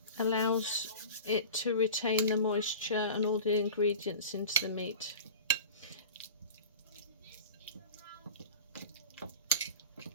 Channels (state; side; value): inverted; both; correlation -0.35